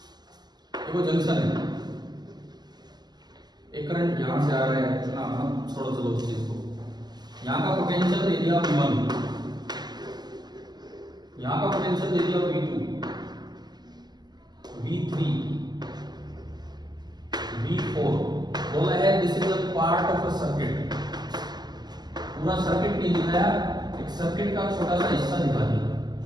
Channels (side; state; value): left; late; 0.20 ms